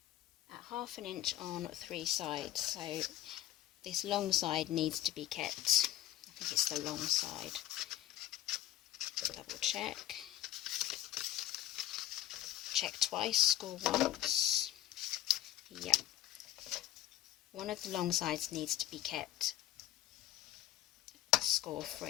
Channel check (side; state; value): right; quieter; 13.4 dB